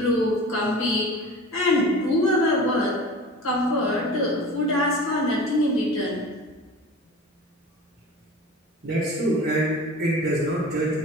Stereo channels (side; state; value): both; normal; correlation 0.37